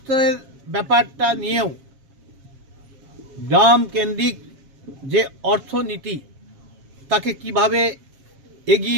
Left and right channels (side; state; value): left; late; 7.4 ms